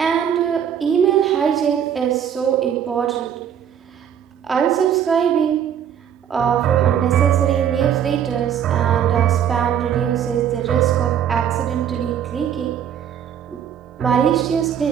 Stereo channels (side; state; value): left; quieter; 9.0 dB